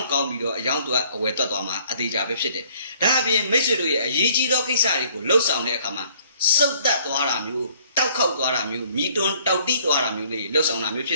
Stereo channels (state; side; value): inverted; both; correlation -0.60